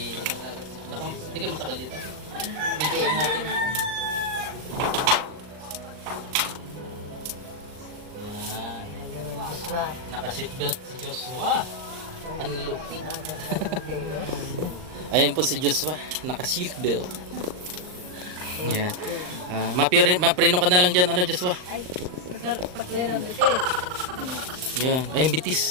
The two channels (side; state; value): left; late; 39 ms